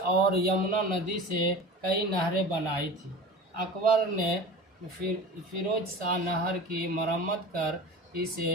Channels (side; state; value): both; normal; correlation 0.34